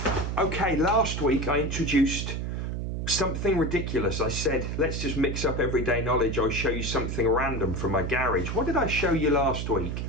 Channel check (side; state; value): right; noise; hum, 3 dB below the sound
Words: Okay, last week I introduced something ridiculous. I said, let's just mix up everyday knowledge. I'll show you something random from my garage. What did I show you last week?